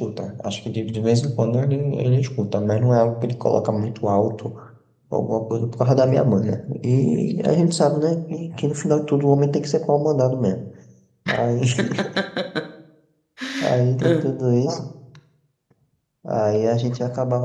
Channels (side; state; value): both; identical; correlation 1.00